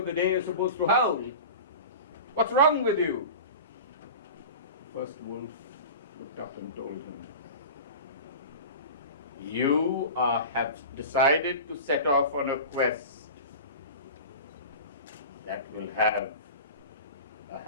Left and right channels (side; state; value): both; inverted; correlation -0.33